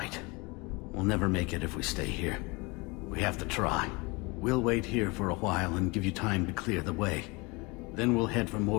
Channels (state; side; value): quieter; right; 26.7 dB